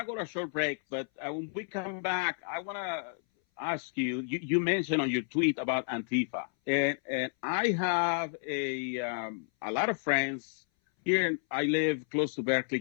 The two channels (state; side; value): silent; right; 57 dB below the other